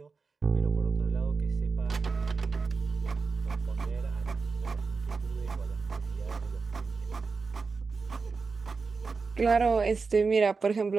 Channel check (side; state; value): left; quieter; 4.6 dB